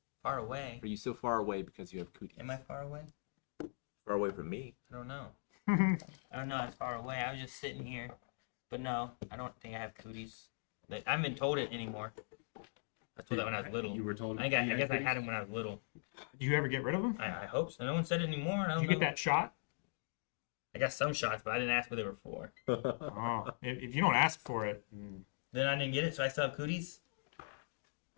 far away. Are you so far away because you have cooties? Am I far away? Far away from me. I don't know. I don't know. I'm far away. I was just sitting here, but no, I don't think I have cooties. I haven't been told it anymore. I was told that when I was little. You were told. I guess I had them when I was little. Do you ever get rid of them? I hope so. No one said it anymore. I Did don't you know. get that shot? I got some shots, but I didn't ask what they were for. Oh, if you don't ask for it, Then I didn't get it, so I still have cooties.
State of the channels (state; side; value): silent; right; digital silence